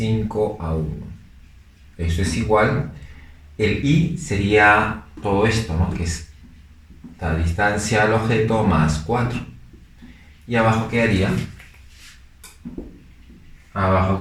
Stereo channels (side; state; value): both; identical; correlation 1.00